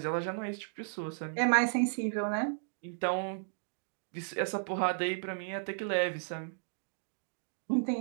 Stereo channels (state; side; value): silent; left; digital silence